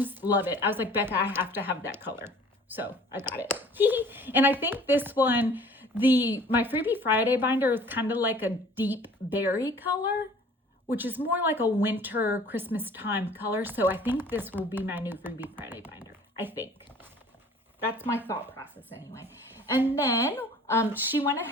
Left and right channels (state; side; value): normal; both; correlation 0.50